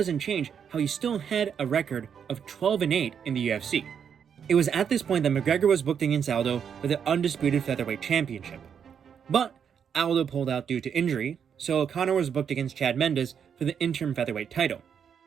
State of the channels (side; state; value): left; quieter; 7.6 dB